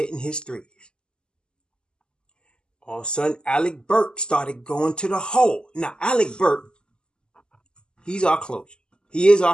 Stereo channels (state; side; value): late; right; 0.047 ms